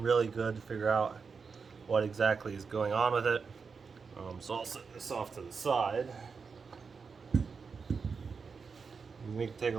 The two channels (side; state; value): left; quieter; 5.3 dB